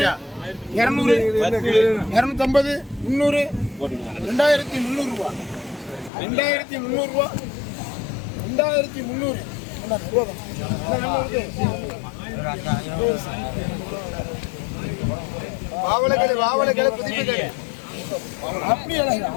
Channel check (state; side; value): drops out; right; at 6.1 s